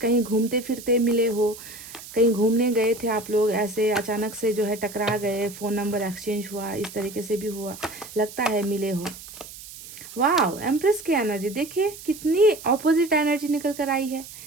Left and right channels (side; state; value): right; noise; hiss, 15 dB below the sound